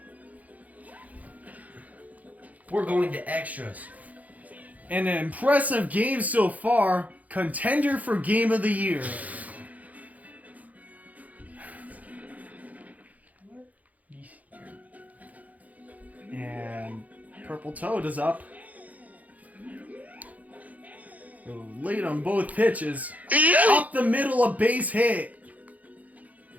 We're going to extras. An impressive game so far. Contender for Game of the Year. And Purple Toad is up. Late on both pitches. Up the middle, a base hit.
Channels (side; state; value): left; late; 0.076 ms